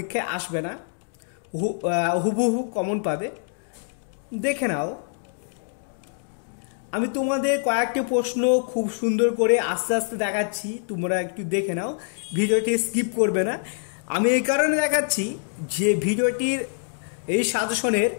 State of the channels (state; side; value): silent; right; digital silence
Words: আসবে না, হুবহু কমন পাবে। দেখে নাও, আমি তোমাদের কয়েকটি প্রশ্ন খুব সুন্দর করে আস্তে আস্তে দেখাচ্ছি, তোমরা একটু দেখে নাও, ভিডিওটি স্কিপ করবে না। আমি এই কারণে দেখাচ্ছি যে ভিডিওটির এই সাজেশনের